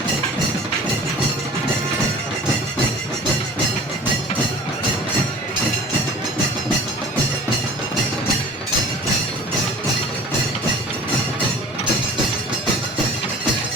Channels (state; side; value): normal; both; correlation 0.44